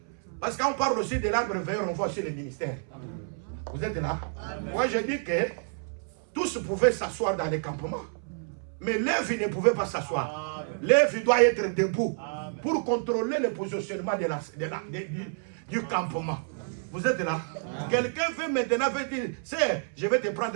Parce qu'on parle aussi de l'arbre veilleur, on voit aussi les ministères. Vous êtes là? Moi, je dis que tous pouvaient s'asseoir dans les campements. Mais Lévi ne pouvait pas s'asseoir. Lévi doit être debout pour contrôler le positionnement du campement. Vous êtes là? Quelqu'un veut maintenant dire, c'est, je vais te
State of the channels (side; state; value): left; silent; 59 dB below the other